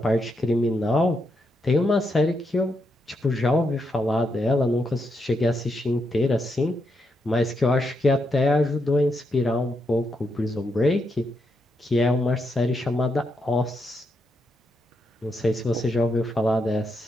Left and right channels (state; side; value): normal; both; correlation 0.81